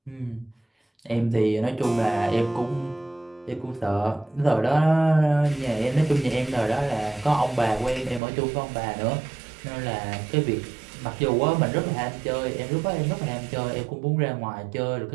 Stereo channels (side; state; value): left; drops out; at 8.2 s